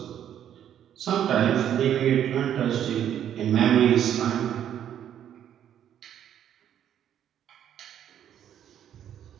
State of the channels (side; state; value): left; quieter; 10.0 dB